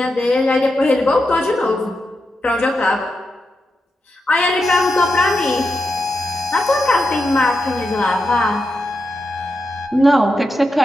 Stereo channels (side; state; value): both; normal; correlation 0.87